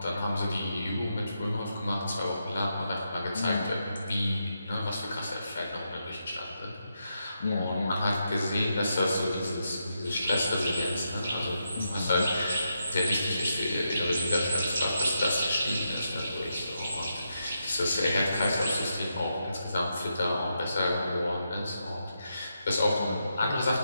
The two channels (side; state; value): both; inverted; correlation -0.84